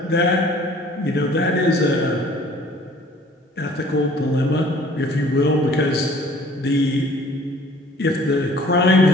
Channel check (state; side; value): normal; both; correlation 0.53